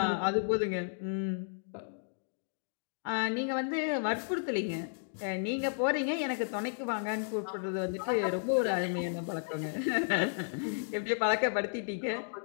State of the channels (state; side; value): silent; right; digital silence